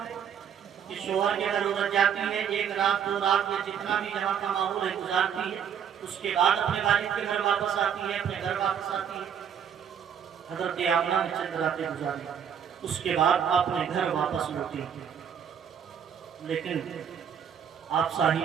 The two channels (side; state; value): left; quieter; 8.2 dB